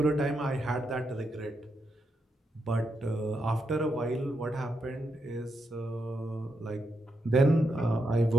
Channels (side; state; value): both; normal; correlation 0.83